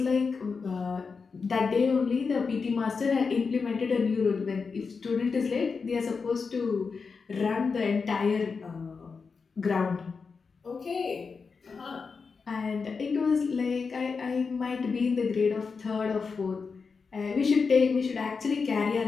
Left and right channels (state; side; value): quieter; right; 5.1 dB